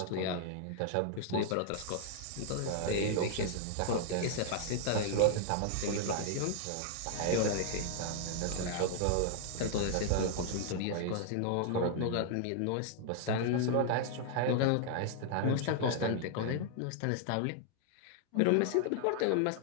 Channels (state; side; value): different; both; correlation -0.01